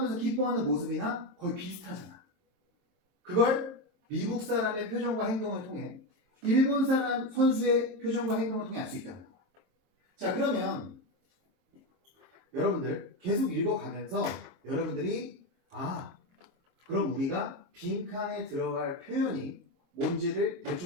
기뻐하는 모습이나 거의 비슷하잖아. 그걸 미국 사람의 표정과 행동을 통해 일본 사람 선수의 표정과 행동을 통해 알 수 있다는 거야. 자, 그러면 여러분들 계속 읽어가면서 여러분들이 그럼 우리가 빈칸에 들어갈 표현이 뭔지를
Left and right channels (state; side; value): late; left; 23 ms